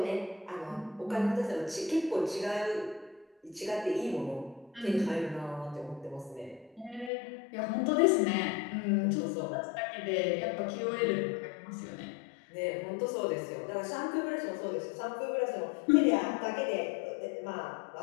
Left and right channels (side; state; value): right; drops out; at 7.1 s